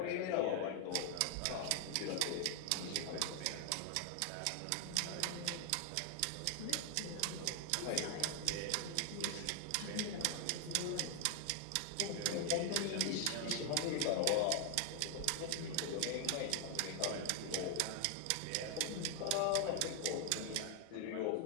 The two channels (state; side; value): different; both; correlation 0.00